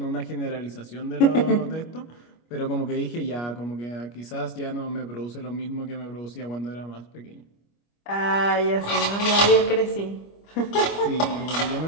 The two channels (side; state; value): right; late; 25 ms